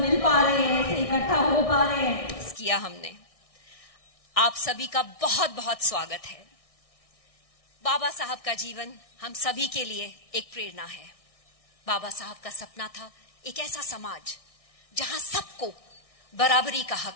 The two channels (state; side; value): late; right; 1.6 ms